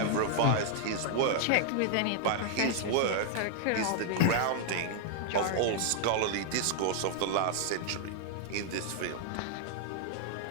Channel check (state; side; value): different; both; correlation 0.00